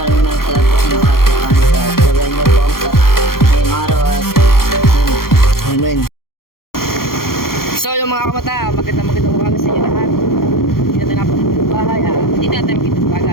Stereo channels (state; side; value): late; right; 0.93 ms